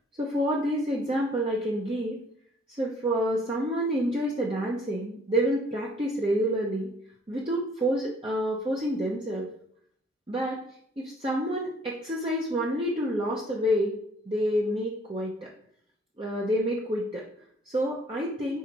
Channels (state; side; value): normal; both; correlation 0.59